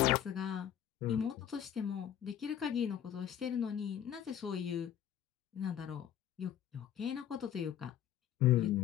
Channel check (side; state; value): right; quieter; 10.2 dB